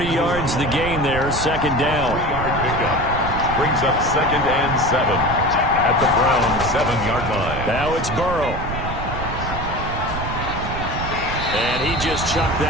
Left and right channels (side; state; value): right; noise; rumble, 6 dB below the sound